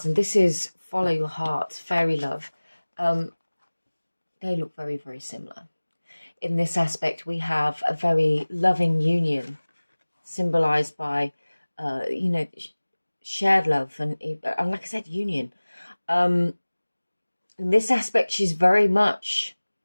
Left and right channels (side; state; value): both; inverted; correlation -1.00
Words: and this is follow your heart, fairy love. They look very, very similar. In this aspect, we have a very loving union, symbolized by, shared love and like I said, union. In this aspect, she's very much